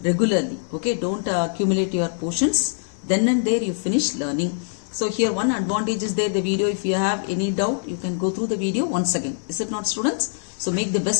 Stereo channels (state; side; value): silent; right; 59 dB below the other